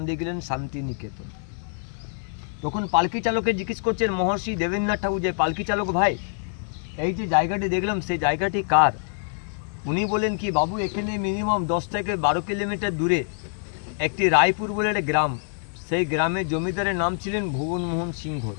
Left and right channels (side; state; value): right; silent; digital silence